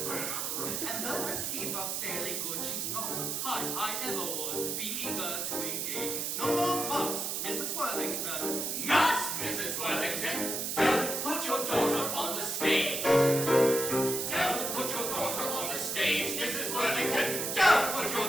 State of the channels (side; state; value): right; noise; hiss, 1 dB below the sound